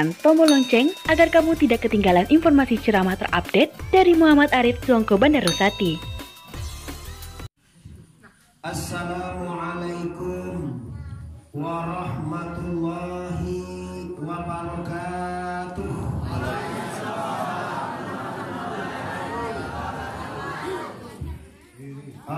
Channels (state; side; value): identical; both; correlation 1.00